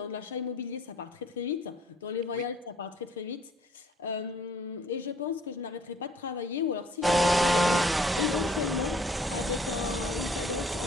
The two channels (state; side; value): normal; both; correlation 0.58